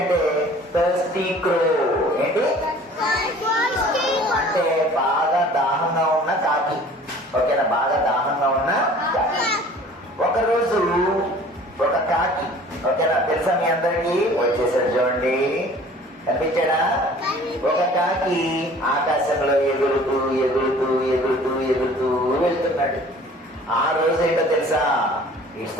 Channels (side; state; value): both; normal; correlation 0.49